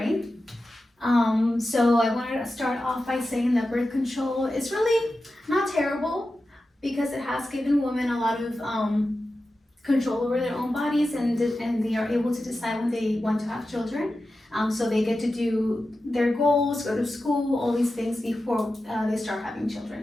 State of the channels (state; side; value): normal; both; correlation 0.92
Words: So I wanted to start off by saying that birth control is really not terrible because it has given women a lot of control over their own bodies, and they are able to decide when they want to have children. So they get to do their goals, go to school, all these things before they start having